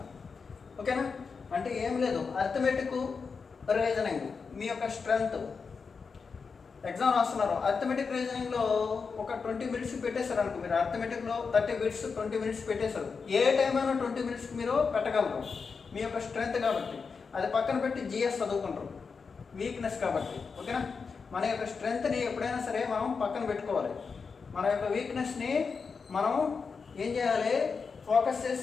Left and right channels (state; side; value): quieter; right; 5.2 dB